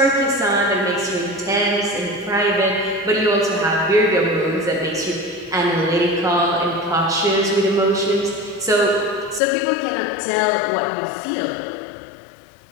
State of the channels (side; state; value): right; drops out; at 9.4 s